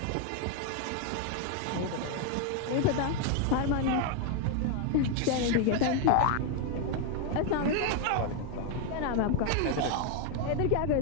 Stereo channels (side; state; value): both; different; correlation 0.01